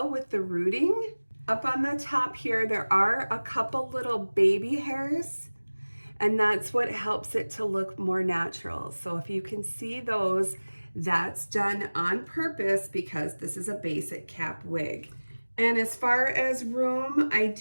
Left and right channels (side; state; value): both; inverted; correlation -1.00